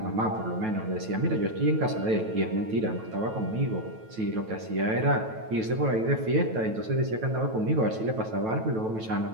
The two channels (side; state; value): left; late; 9.2 ms